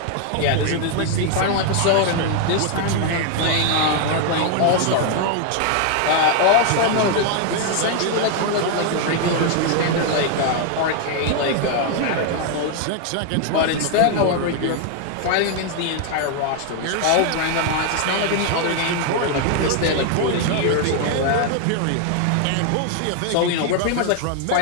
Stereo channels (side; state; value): both; different; correlation 0.00